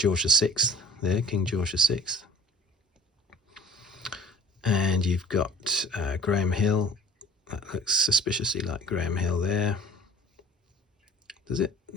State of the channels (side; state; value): both; normal; correlation 0.46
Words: VI there, King George VI. And you've got Graham Hill. That looks suspiciously like Graham Hill there. Does it?